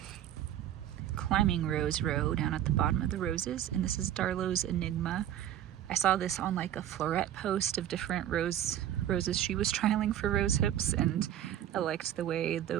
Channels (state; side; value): quieter; left; 11.4 dB